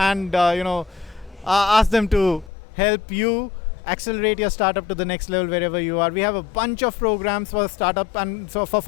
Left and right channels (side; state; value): right; drops out; at 2.5 s